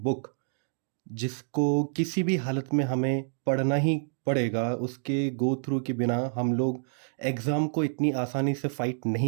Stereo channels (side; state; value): left; silent; digital silence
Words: जिसको किसी भी हालत में हमें पढ़ना ही पड़ेगा, उसके गो थ्रू के बिना हम लोग एग्ज़ाम को इतनी आसानी से फाइट